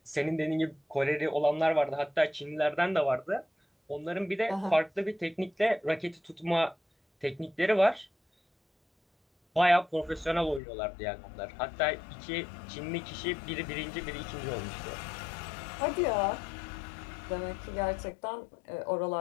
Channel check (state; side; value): drops out; right; at 10.6 s